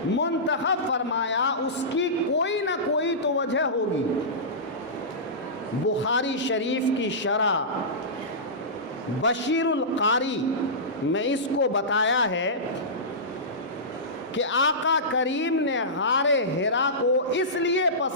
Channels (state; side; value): normal; both; correlation -0.18